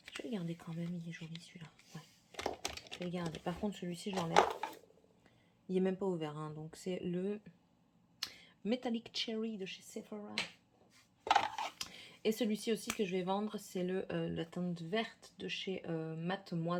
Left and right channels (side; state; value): both; identical; correlation 1.00